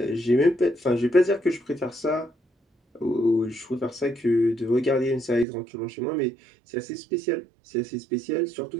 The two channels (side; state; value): left; drops out; at 5.5 s